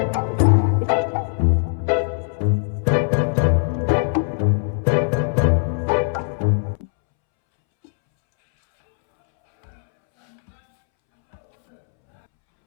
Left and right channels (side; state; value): right; silent; 66 dB below the other